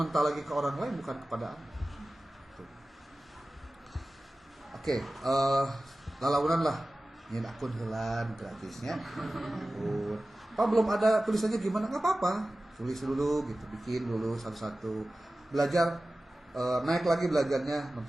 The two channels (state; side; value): normal; both; correlation 0.96